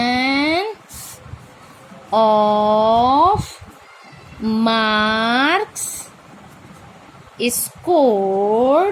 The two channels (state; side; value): identical; both; correlation 1.00